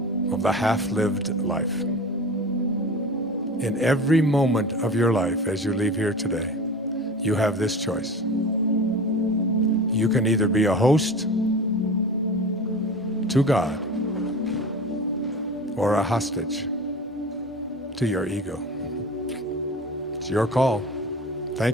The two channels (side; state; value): both; normal; correlation 0.34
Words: of the half-lived life. In every moment of your life as you leave here today, you have this choice. You can either be a host to God or a hostage to your ego. It's your call.